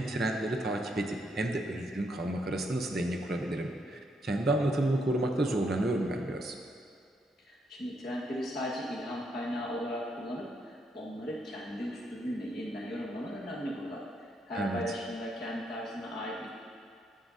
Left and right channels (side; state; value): both; normal; correlation 0.76